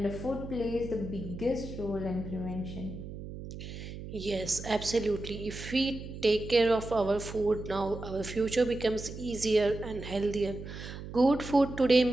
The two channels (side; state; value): right; noise; hum, 10 dB below the sound